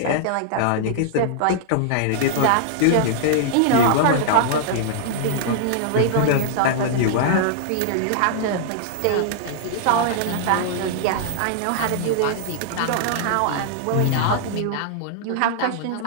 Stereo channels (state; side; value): different; both; correlation -0.01